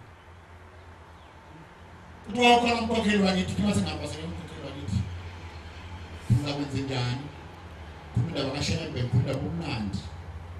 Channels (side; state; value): both; identical; correlation 1.00